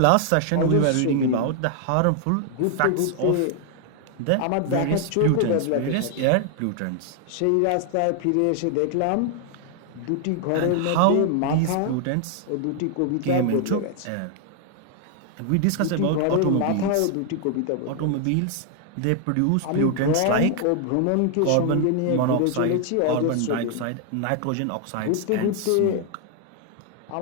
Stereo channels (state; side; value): different; both; correlation 0.00